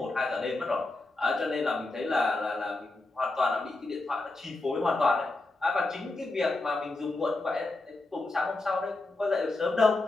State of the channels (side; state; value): right; quieter; 3.1 dB